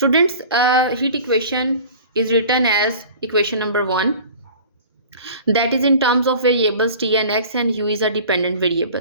heat equation is written as equation number 1, that is in terms of variables t and x, and u is a dependent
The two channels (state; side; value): inverted; both; correlation -0.42